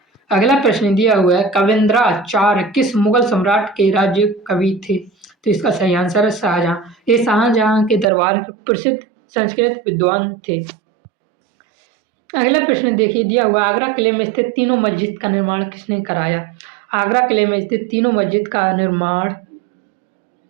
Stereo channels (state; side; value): drops out; left; at 8.1 s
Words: अगला प्रश्न दिया हुआ है कविंद्राचार्य किस मुगल सम्राट के राज्य कवि थे? तो इसका सही आंसर है शाहजहां। ये शाहजहां के दरबार के प्रसिद्ध संस्कृत विद्वान थे। अगला प्रश्न देखिए दिया हुआ आगरा किले में स्थित तीनों मस्जिद का निर्माण किसने कराया? आगरा किले में स्थित तीनों मस्जिद का निर्माण